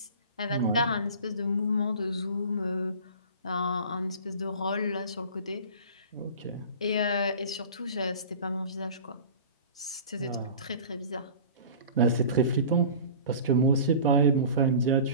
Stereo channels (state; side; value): inverted; both; correlation -0.39